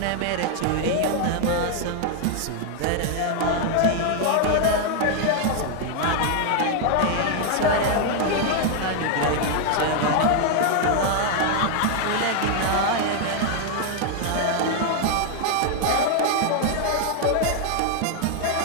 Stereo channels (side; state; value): both; different; correlation 0.00